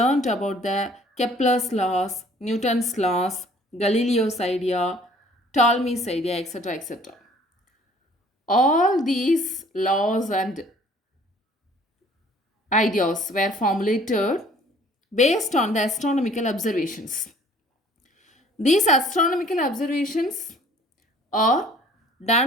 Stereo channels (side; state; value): both; normal; correlation 0.55